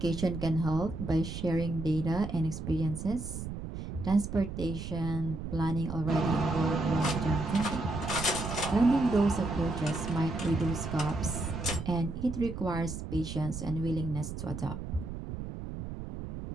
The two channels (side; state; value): right; noise; rumble, 7 dB below the sound